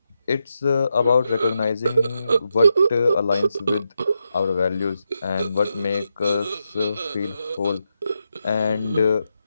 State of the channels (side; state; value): both; inverted; correlation -0.85